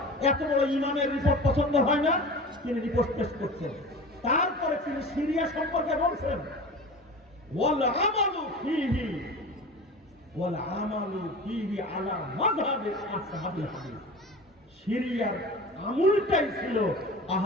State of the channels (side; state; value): both; normal; correlation 0.35